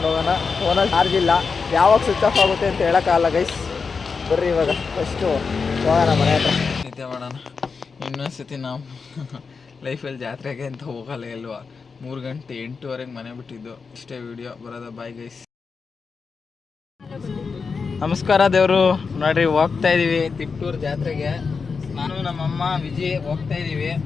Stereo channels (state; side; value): quieter; right; 5.1 dB